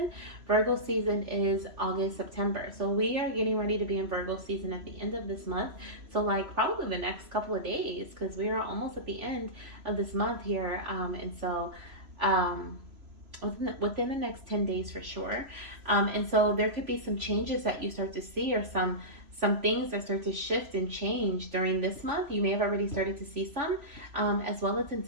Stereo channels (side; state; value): left; late; 3.0 ms